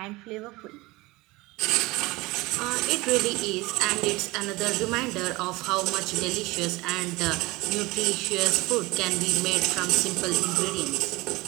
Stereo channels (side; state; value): left; quieter; 21.6 dB